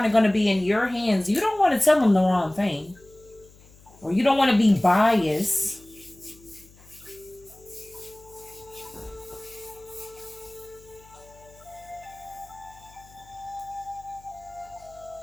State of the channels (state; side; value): noise; left; hum, 25 dB below the sound